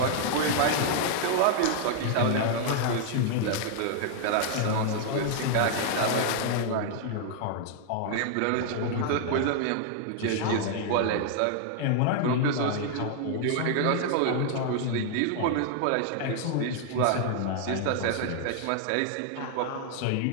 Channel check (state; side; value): different; both; correlation 0.00